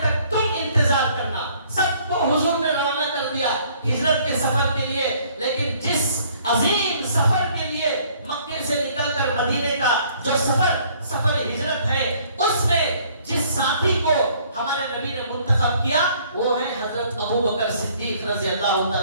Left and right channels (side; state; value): both; inverted; correlation -0.60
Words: تک تم انتظار کرنا۔ سب کو حضور نے روانہ کر دیا ہجرت کے سفر کے لیے، لیکن جس عظیم سفر کے لیے مکے سے نکل کر مدینے کا جو سفر ہجرت ہے، اس میں جس ساتھی کو ہمارے نبی نے منتخب کیا وہ ہے حضرت ابو بکر صدیق رضی اللہ